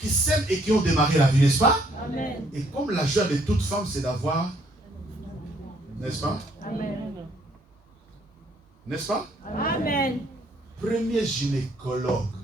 s'aiment et qui ont démarré la vie, n'est-ce pas? Amen. Et comme la joie de toute femme, c'est d'avoir, n'est-ce pas? Amen. N'est-ce pas? Amen. Premier gynécologue,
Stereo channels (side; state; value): both; normal; correlation 0.66